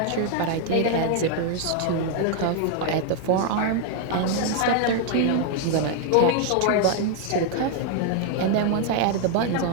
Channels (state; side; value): different; both; correlation 0.00